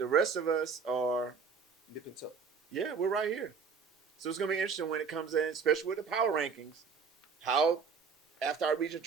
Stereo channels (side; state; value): left; quieter; 5.7 dB